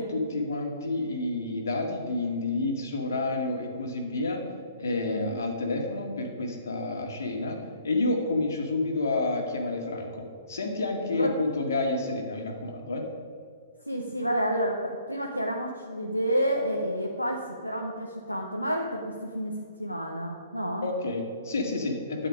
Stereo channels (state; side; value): inverted; both; correlation -0.64